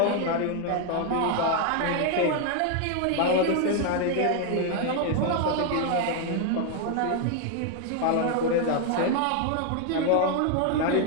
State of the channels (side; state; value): both; different; correlation 0.00